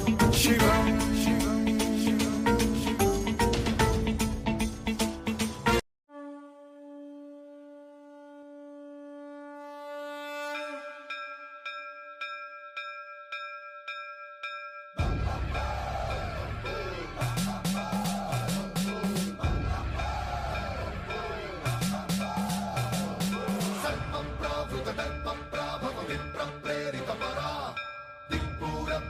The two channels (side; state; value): both; identical; correlation 1.00